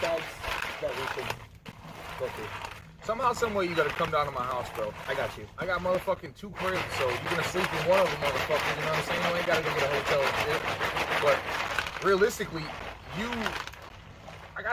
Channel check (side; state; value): both; identical; correlation 1.00